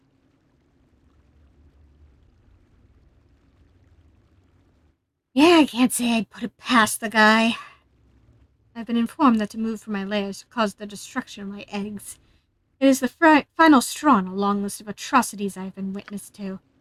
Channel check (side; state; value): both; identical; correlation 1.00